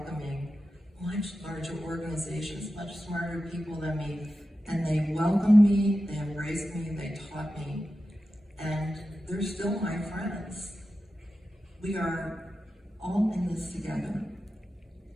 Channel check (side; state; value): both; normal; correlation 0.92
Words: much larger organizations, much smarter people than me, and they welcomed me, they embraced me, they taught me, and they're still my friends. We are all in this together.